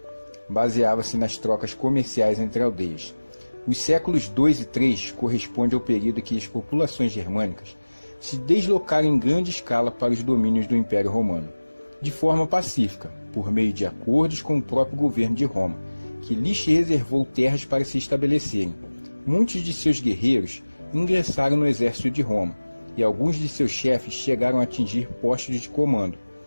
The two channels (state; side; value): inverted; both; correlation -1.00